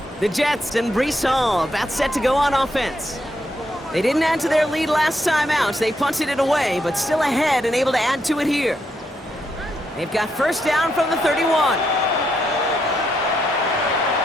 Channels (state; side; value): normal; both; correlation 0.79